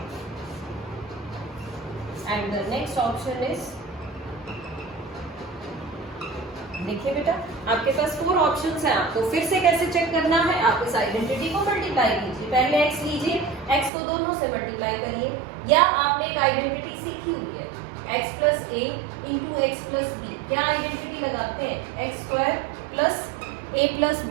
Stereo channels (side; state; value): left; drops out; at 13.9 s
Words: and the next option is, देखिए बेटा आपके पास 4 ऑप्शंस हैं। आपको फिर से कैसे चेक करना है, आप इस आइडेंटिटी को मल्टीप्लाई कीजिए। पहले x लीजिए, x को दोनों से मल्टीप्लाई करिए, या आपने एक आइडेंटिटी सीखी हुई है x plus a into x plus b. क्या आइडेंटिटी लगाते हैं, x square plus a plus